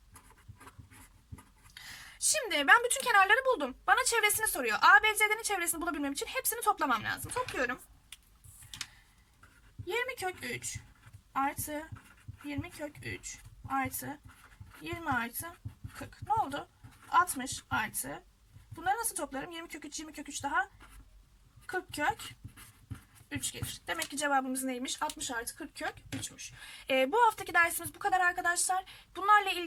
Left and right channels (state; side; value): identical; both; correlation 1.00